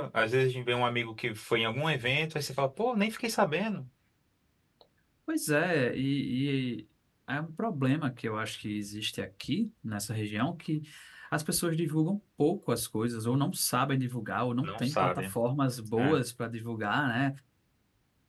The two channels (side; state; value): both; identical; correlation 1.00